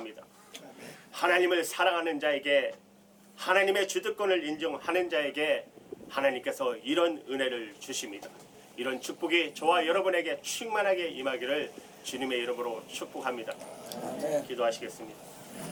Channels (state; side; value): identical; both; correlation 1.00